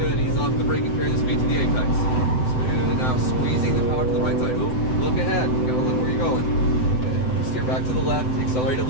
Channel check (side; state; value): right; late; 7.9 ms